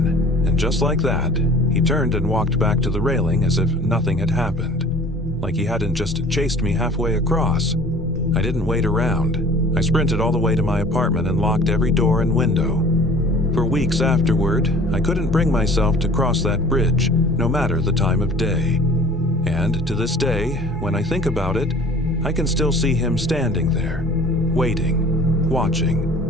and just like that, he turned and walked back to the railing as if nothing had happened, like he hadn't just chased me halfway across. I didn't wait around. I sprinted all the way to my apartment and locked every door and window. For weeks afterward, I couldn't bring myself to cross that bridge, no matter the time of day. And to this day, when I think about it, I can still see him standing there, waiting,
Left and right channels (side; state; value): both; normal; correlation 0.47